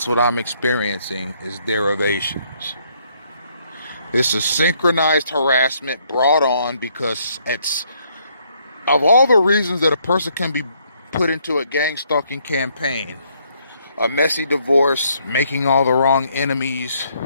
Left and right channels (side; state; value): both; inverted; correlation -0.69